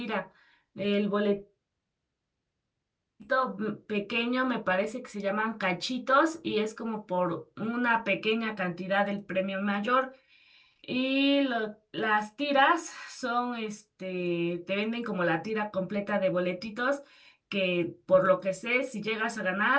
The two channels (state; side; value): identical; both; correlation 1.00